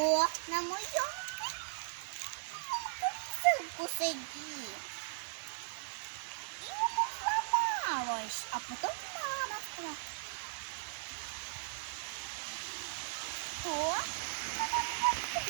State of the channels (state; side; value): silent; left; 53 dB below the other